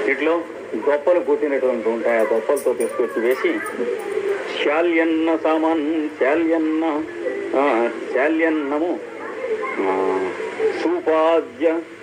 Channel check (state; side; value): identical; both; correlation 1.00